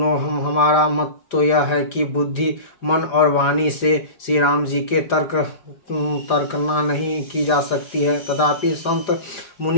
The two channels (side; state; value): right; late; 4.9 ms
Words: हमारा मत तो यह है कि बुद्धि मन और वाणी से श्री राम जी के तर्कना नहीं की जा सकती है। तथापि संत